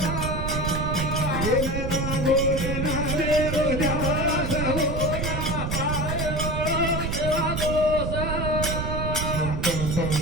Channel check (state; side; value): noise; right; rumble, 2 dB below the sound